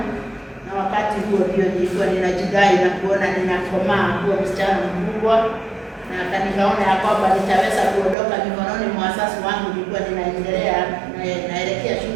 na wakati huo ndio nilikuwa ninajidai na kuona ninakomaa kuwa msichana mkubwa, na nikaona ya kwamba nitaweza kuondoka mikononi mwa wazazi wangu. Nilikuwa naelekea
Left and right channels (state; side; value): drops out; left; at 8.2 s